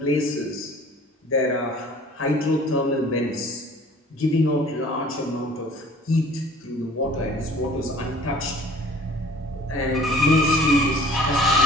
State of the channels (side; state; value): both; normal; correlation 0.50